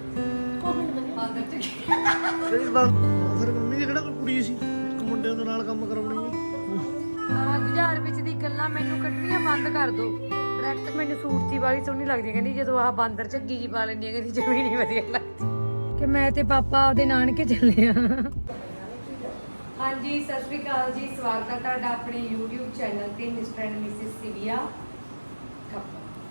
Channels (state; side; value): inverted; both; correlation -1.00